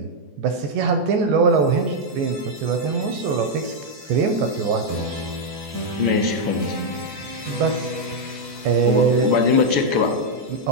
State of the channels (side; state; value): left; late; 14 ms